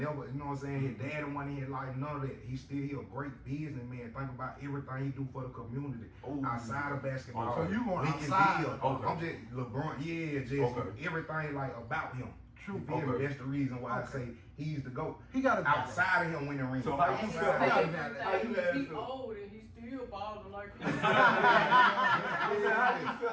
you know what I'm saying? His dad wasn't here, like none of that. He a great businessman. Think about everything he do for the community. Ooh. Outside of basketball. Okay. So you going We can outside. deal. Okay. I'm just LeBron, yeah, just Okay. everything like about him. True. You feel me? Okay. That's the reason why I Okay. say he's the GOAT. He got a Outside of him winning rings. So how you And feel? his How you favorite How you thing had is he feel? old and he's still balling like I said, how you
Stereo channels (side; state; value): both; identical; correlation 1.00